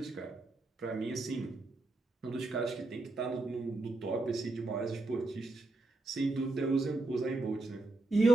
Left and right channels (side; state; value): left; quieter; 3.1 dB